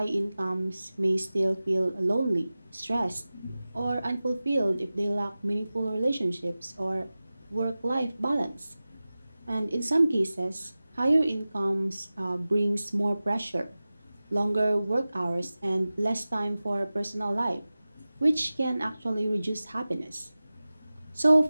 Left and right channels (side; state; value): both; inverted; correlation -0.97